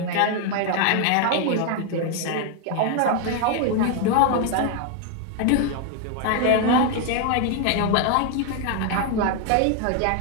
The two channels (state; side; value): different; both; correlation 0.01